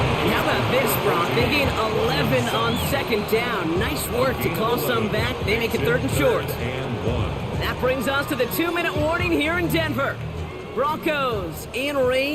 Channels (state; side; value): identical; both; correlation 1.00